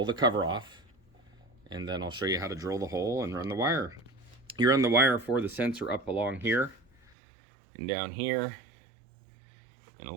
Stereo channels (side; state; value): left; drops out; at 7.2 s